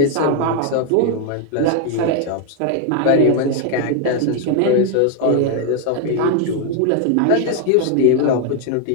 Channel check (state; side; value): different; both; correlation 0.01